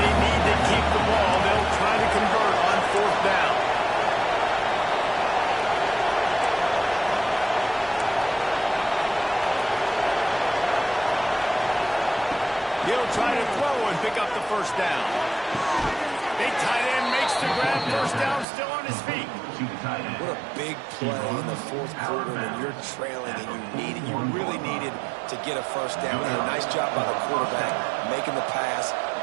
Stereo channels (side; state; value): left; drops out; at 18.4 s